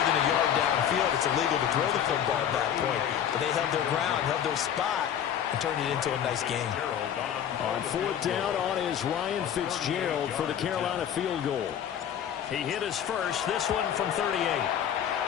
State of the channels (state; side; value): quieter; right; 9.4 dB